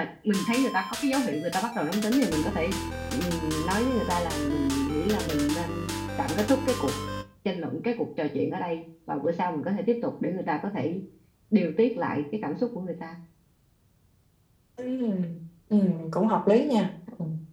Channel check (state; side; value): identical; both; correlation 1.00